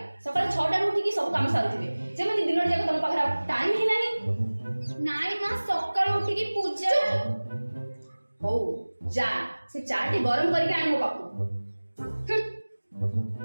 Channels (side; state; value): both; inverted; correlation -1.00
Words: सकाळ 6टा रे उठी की सब काम सारुथिबे जेमति दिन जाक तम पाखरा टाइम ही नाही। नाई माँ सकाळ उठी की पूजा। हो जा से चाटी गरम करके आन मो पाखु।